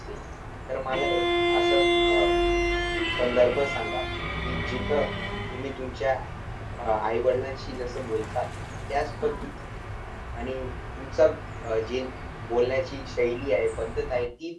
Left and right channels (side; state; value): both; identical; correlation 1.00